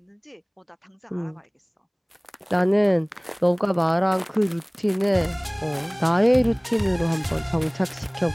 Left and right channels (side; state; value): both; identical; correlation 1.00